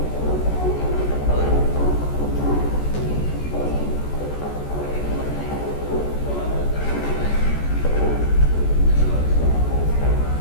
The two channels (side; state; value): right; late; 14 ms